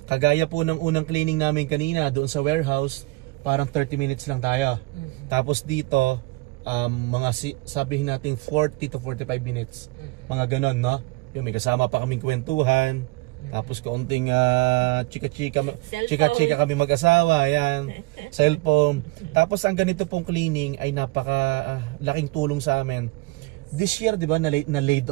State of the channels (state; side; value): quieter; left; 22.2 dB